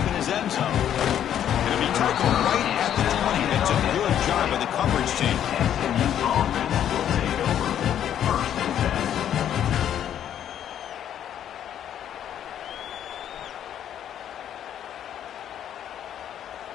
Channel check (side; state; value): right; quieter; 10.2 dB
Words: in his end zone. And if he tackled right at the 20, that's a good job by the coverage team.